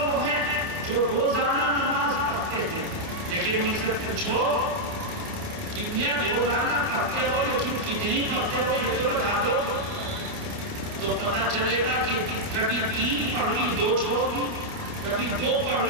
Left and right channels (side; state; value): left; late; 29 ms